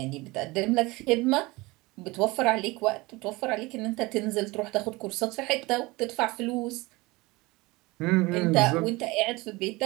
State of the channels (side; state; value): left; quieter; 22.5 dB